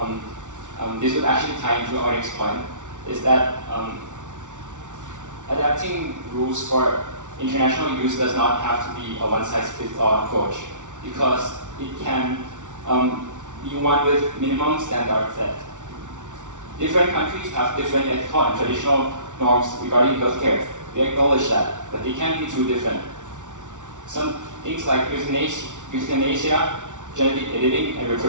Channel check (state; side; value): late; left; 0.86 ms